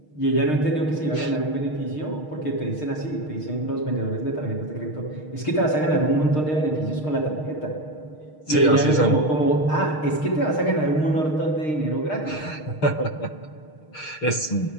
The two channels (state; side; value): late; right; 6.5 ms